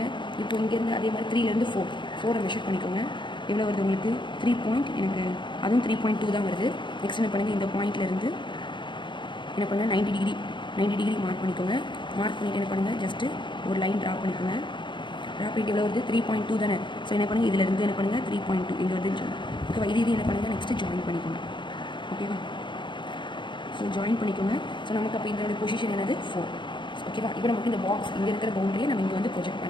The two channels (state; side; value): late; right; 0.23 ms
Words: இப்போ இங்கேருந்து அதே மாதிரி 3லேருந்து 4 மெஷர் பண்ணிக்கோங்க. எவ்வளோ வருது உங்களுக்கு, 3 எனக்கு அதுவும் 3.2 தான் வருது. நெக்ஸ்ட் என்ன பண்ணுங்கள், இந்த பாயிண்ட்லேருந்து என்ன பண்ணுங்கள், 90 டிகிரி மார்க் பண்ணிக்கோங்க. மார்க் பண்ணிவிட்டு என்ன பண்ணுங்கள், ஜஸ்ட்டு ஒரு லைன் ட்ரா பண்ணிக்கோங்க. ட்ரா பண்ணிட்டு எவ்வளோ வருது, 3.2 தானே. ஸோ என்ன பண்ணுங்கள், இதிலேருந்து என்ன பண்ணுங்கள், 3.2 இங்கே வருதுன்னு சொல்லுங்கள். ஓகேவா. இது என்ன பண்ணுங்கள், நெக்ஸ்ட்டு ஜாயின் பண்ணிக்கோங்க. ஓகேவா. ஸோ ஜாயின் பண்ணிக்கோங்க. ஸோ நமக்கு அப்போ இதனுடைய பொசிஷன் என்னது, 4. ஓகேவா. இப்போ நமக்கு இந்த பாக்ஸ் இங்கே இருக்கிற பவுண்டரியை நம்ம இங்கே வந்து ப்ரொஜெக்ட்